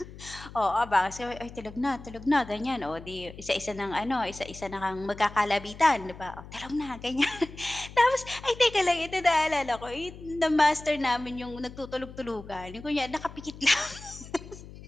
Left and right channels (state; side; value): noise; left; hum, 16 dB below the sound